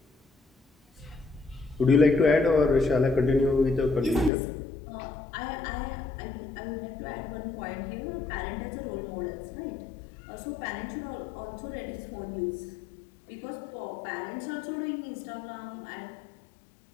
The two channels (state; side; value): drops out; right; at 4.3 s